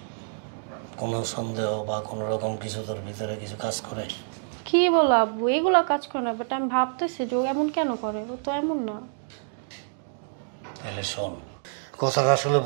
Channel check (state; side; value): silent; left; digital silence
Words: কোনো সন্দেহ বা কোনো রকম কিছু তোর ভিতরে কিছু কাজ করে? কি বলো আব্বু, এগুলো কাজ করে না, বাট আমি ভাবতেছি যে ও এমন কেন করে, ও তো এমন না। তাহলে শোন, কথাটা আসলে